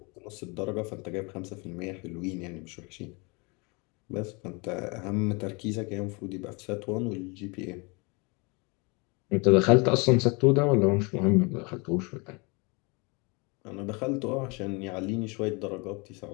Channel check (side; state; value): right; quieter; 29.5 dB